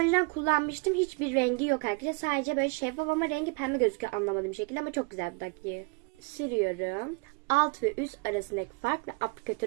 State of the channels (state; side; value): quieter; left; 29.3 dB